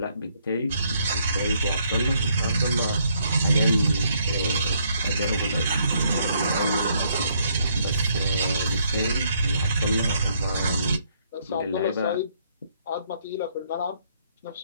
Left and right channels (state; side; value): inverted; both; correlation -0.70